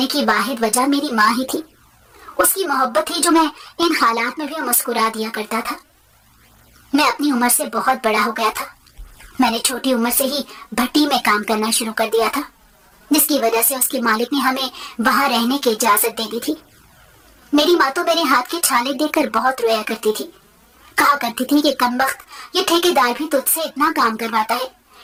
की वाहिद वजह मेरी माँ ही थी। उसकी मोहब्बत थी जो मैं इन हालात में भी मुस्कुरा दिया करता था। मैं अपनी उम्र से बहुत बड़ा हो गया था। मैंने छोटी उम्र से ही भट्टी में काम करना शुरू कर दिया था, जिसकी वजह से उसके मालिक ने हमें वहां रहने की इजाजत दे दी थी। मेरी माँ तो मेरे हाथ के छाले देखकर बहुत रोया करती थी। कहा करती थी कि कमबख्त, ये ठेकेदार भी तुझसे इतना काम करवाता है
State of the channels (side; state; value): both; identical; correlation 1.00